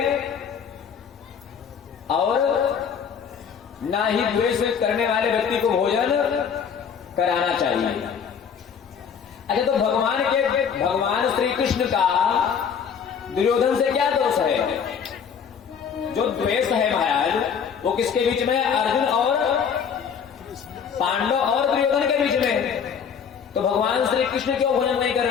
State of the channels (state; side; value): quieter; right; 7.1 dB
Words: और ना ही द्वेष करने वाले व्यक्ति को भोजन कराना चाहिए। अच्छा, तो भगवान श्री कृष्ण का दुर्योधन से क्या दोष है? जो द्वेष है महाराज वो किसके बीच में? अर्जुन और पांडव और दुर्योधन के बीच में। तो भगवान श्री कृष्ण क्यों भोजन नहीं कर